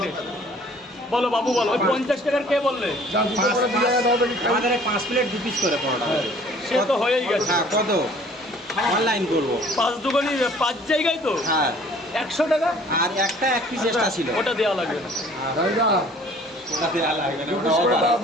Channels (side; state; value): both; normal; correlation 0.53